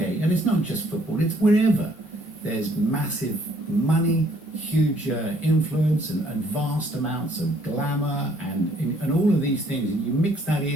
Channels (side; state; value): both; normal; correlation 0.64